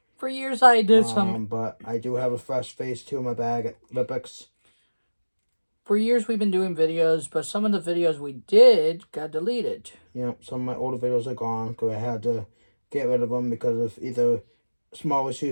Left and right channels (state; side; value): inverted; both; correlation -1.00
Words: For years I did some... But I do have a fresh Phase 2 in my bag at Lipix. For years we've been doing videos, but some of the videos we did got deleted. Yep, some of my older videos are gone because I had to get rid of them because of either small